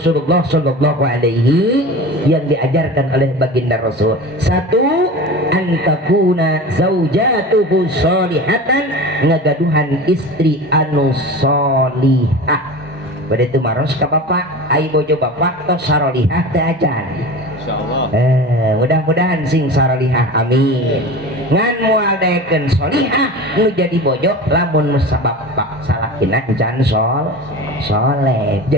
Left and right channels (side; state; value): both; normal; correlation 0.32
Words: sallallahu alaihi yang diajarkan oleh baginda Rasul. 1 antakuna zaujatuhu sholihatan, ngagaduhan istri anu sholihah. Pada itu maros ka bapak ai bojo bapak tos sarolihah teh ajan insyaallah. Mudah-mudahan sing sarolihah amin. Ngan moal daekeun sholihah nu jadi bojo lamun sabab salakina encan soleh.